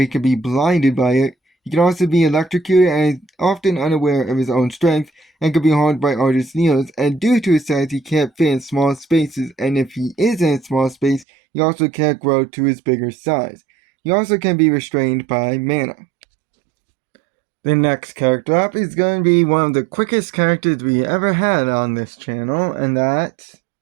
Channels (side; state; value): left; drops out; at 11.2 s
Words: he can be blinded by it. He can also be electrocuted and is often unaware of his own strength and can be harmed by artist needles. And due to his size, he can't fit in small spaces. And if he is in a small space, he also can't grow to his bigger size. He also can be restrained by mana. The next character up is going to be one of the quickest characters we ever had on this channel, and that's...